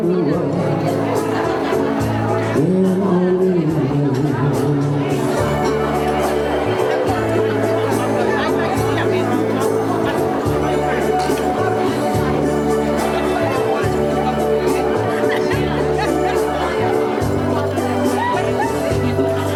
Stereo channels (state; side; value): identical; both; correlation 1.00